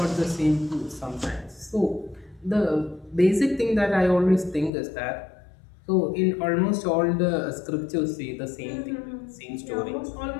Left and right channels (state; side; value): drops out; right; at 4.7 s